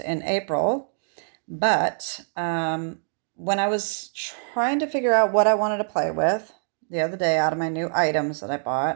in April, but when I was trying to figure out what I wanted to play with the other day out of my new items that I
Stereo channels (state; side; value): silent; left; digital silence